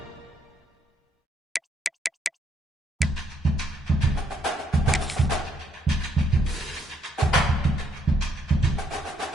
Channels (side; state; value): both; normal; correlation 0.71